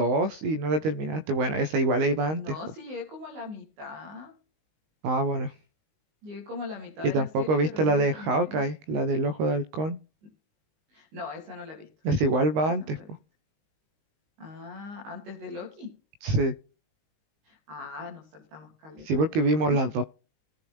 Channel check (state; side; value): late; left; 19 ms